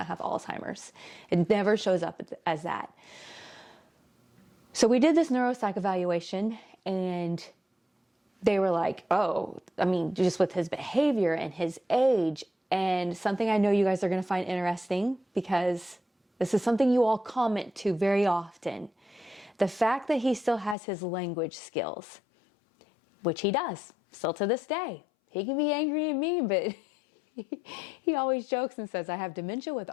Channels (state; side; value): drops out; right; at 20.8 s